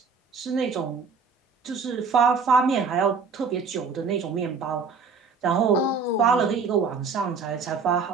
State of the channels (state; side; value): quieter; left; 5.1 dB